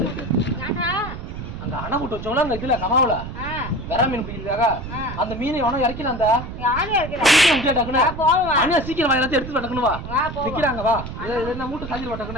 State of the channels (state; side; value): noise; right; rumble, 9 dB below the sound